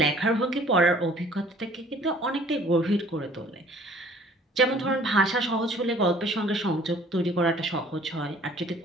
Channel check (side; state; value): both; normal; correlation 0.54